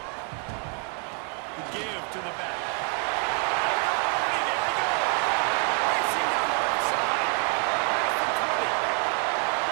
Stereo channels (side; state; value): left; quieter; 38.3 dB